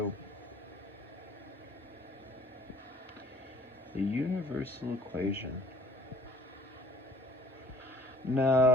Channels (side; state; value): both; normal; correlation 0.54